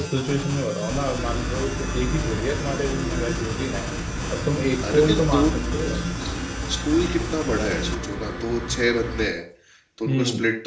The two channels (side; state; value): both; identical; correlation 1.00